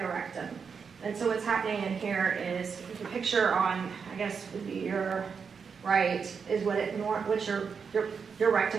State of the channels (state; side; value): quieter; left; 6.0 dB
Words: And so what's happening in here is the picture on, I guess, would be your right, is what your